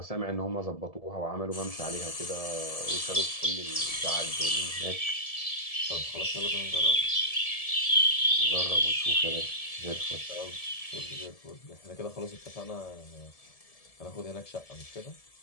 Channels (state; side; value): late; right; 1.7 ms